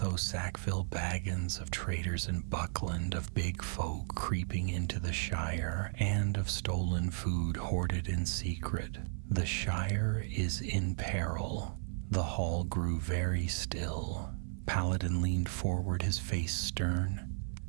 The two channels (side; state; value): left; silent; 55 dB below the other